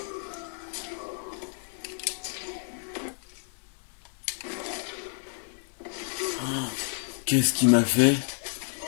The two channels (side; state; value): right; silent; 58 dB below the other